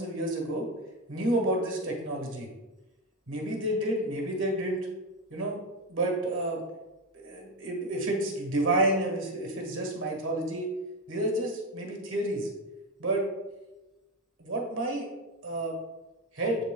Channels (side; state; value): both; normal; correlation 0.14